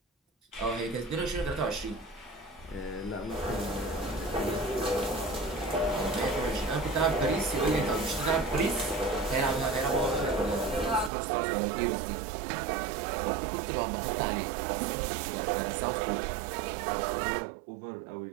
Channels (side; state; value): left; drops out; at 11.1 s